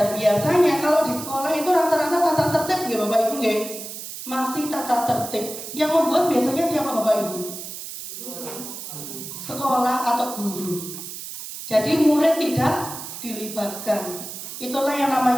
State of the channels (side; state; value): right; noise; hiss, 10 dB below the sound